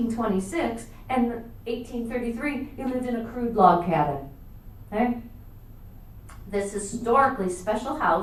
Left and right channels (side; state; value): both; identical; correlation 1.00